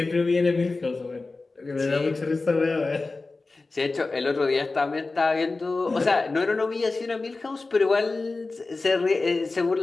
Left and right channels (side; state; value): right; quieter; 3.6 dB